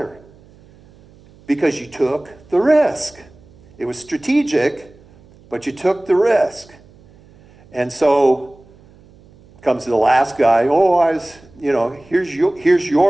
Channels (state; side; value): noise; right; hum, 27 dB below the sound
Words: Because you took the risk. It was strategic, but you took the risk. And so comes the last guy. Oh, here's